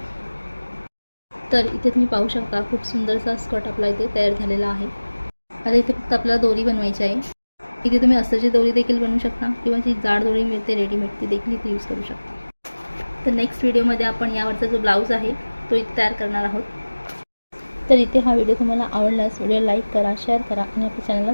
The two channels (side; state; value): both; inverted; correlation -1.00